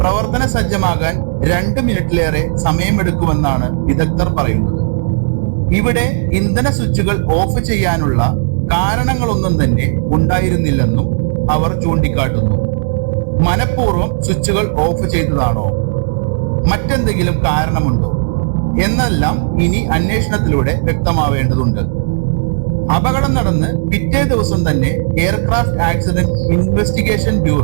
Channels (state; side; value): silent; left; digital silence